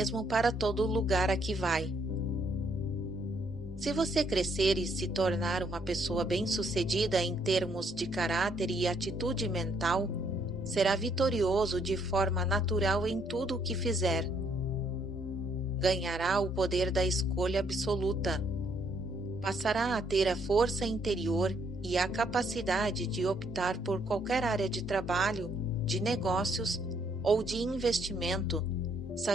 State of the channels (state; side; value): normal; both; correlation 0.70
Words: para todo lugar a que vai. Se você crescer e se tornar uma pessoa bem-sucedida em termos de caráter e atitude mental, será vitorioso de forma natural em tudo o que fizer. Ganhará o poder da escolha absoluta. Passará a ter a força interior e a capacidade de optar por qualquer área de trabalho, de negócios ou de investimento,